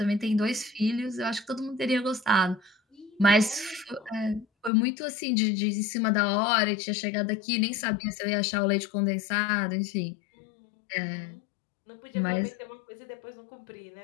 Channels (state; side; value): drops out; right; at 4.7 s